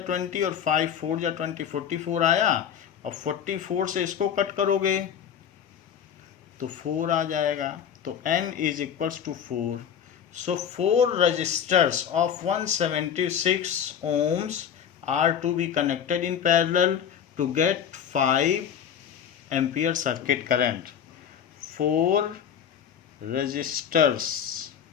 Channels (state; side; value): quieter; right; 8.5 dB